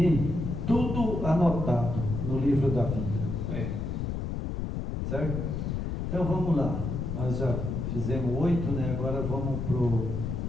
Tudo anotado no livro da vida. Certo? Então vamos lá. Nós já fizemos 8, né? Agora vamos para o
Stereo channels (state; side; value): noise; left; rumble, 3 dB below the sound